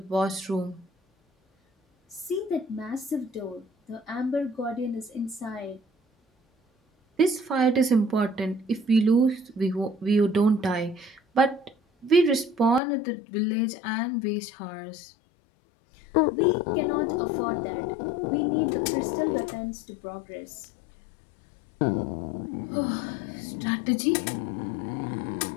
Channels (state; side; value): drops out; right; at 12.8 s